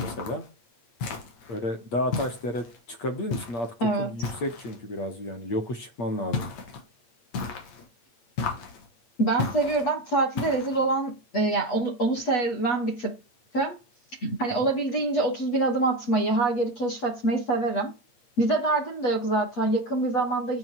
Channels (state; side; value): late; right; 8.2 ms